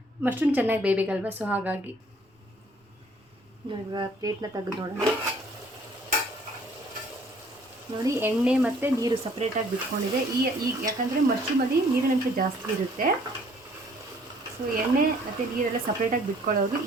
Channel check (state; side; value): normal; both; correlation 0.59